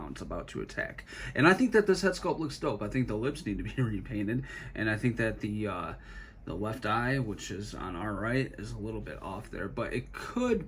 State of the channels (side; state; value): both; identical; correlation 1.00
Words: about to attack. And I think that this head sculpt looks dope. I think the lips need to be repainted, and I think that the left eye, which is on our right, is a little bit off there, but it